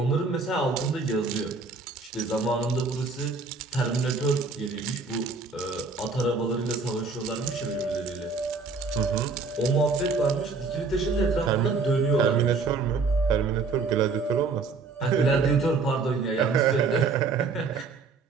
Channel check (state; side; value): quieter; left; 4.4 dB